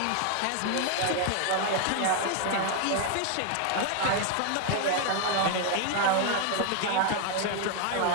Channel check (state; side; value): different; both; correlation 0.01